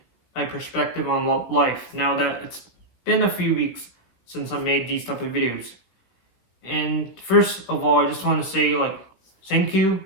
my perspective on life now that it's been a few weeks since I made these type of videos. And first of all, I just want to say, thank you.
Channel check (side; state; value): right; late; 16 ms